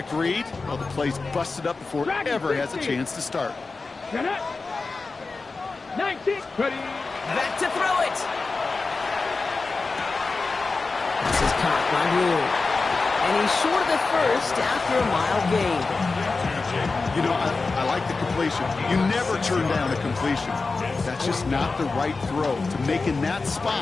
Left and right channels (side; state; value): right; quieter; 4.0 dB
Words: read, well, the play's busted up before it ever has a chance to start. Get it. 19. Ready. Back to throw it. This is caught by Blue. And he's short of the first after a mild gain. You know, I like the completion. You never turn down a completion. That's just not the right throw to make in that